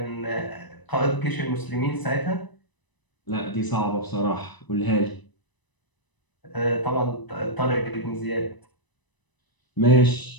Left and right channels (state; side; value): late; right; 1.0 ms